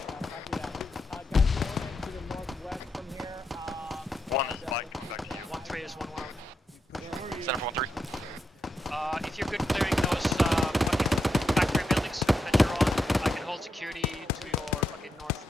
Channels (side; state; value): both; normal; correlation 0.84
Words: To the northwest from here. 1 is Mike, coming back to you. 1-3 is 1-1. Center for 1-3. If you're good clearing those fucking factory buildings that you're on, I can hold security to your fucking